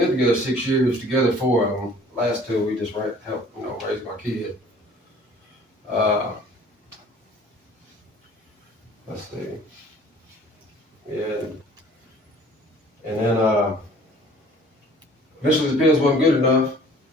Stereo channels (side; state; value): both; normal; correlation 0.52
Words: together 6 years, together 4 of them. Last 2, we just helped, you know, raise my kid. Let's see. Yeah. And then eventually the pills wasn't good enough.